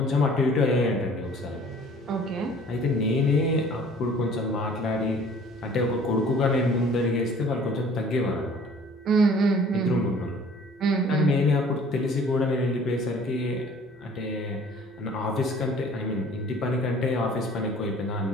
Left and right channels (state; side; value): normal; both; correlation 0.51